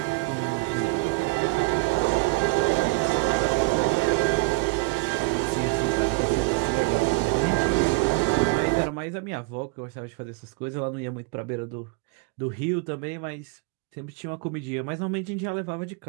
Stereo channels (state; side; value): quieter; left; 25.7 dB